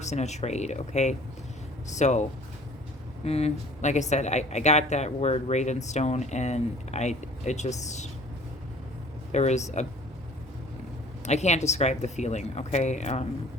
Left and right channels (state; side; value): normal; both; correlation 0.50